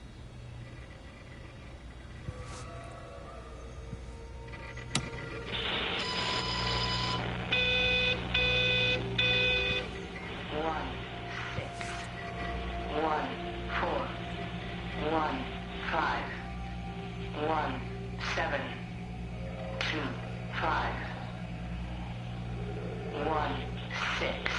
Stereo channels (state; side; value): identical; both; correlation 1.00